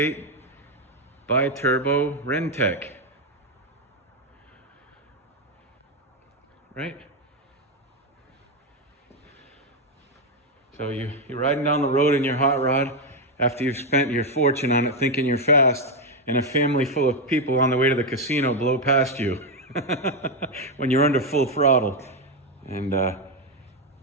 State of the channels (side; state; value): both; normal; correlation 0.05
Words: bi-turbo Rentec. Right? So you're riding down the road in your hot rod after you've spent your fortune on it thinking you're fast, and a family full of people on the way to the casino blow past you when you're under full throttle. And